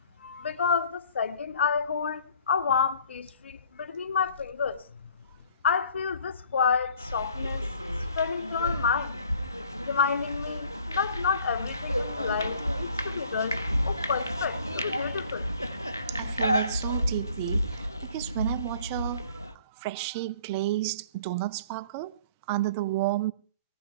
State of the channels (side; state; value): both; inverted; correlation -0.54